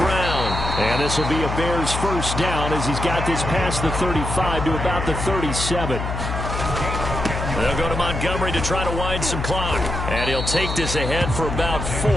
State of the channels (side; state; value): left; noise; hum, 4 dB below the sound